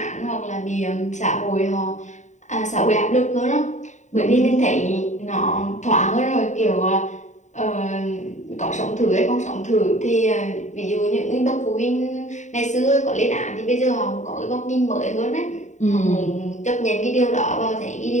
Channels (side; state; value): right; late; 0.34 ms